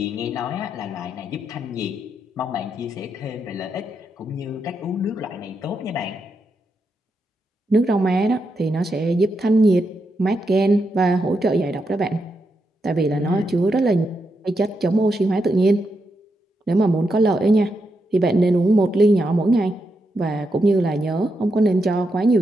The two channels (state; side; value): normal; both; correlation 0.83